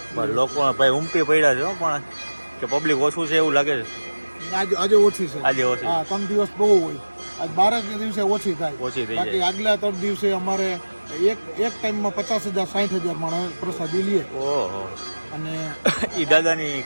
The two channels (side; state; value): both; inverted; correlation -1.00